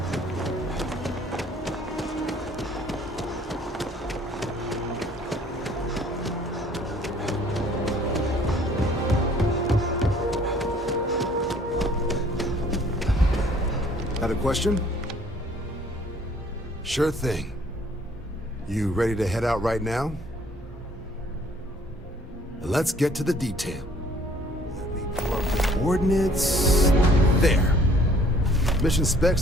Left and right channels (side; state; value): both; normal; correlation 0.58